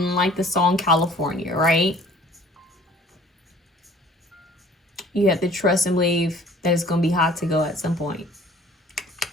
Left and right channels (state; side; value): normal; both; correlation 0.52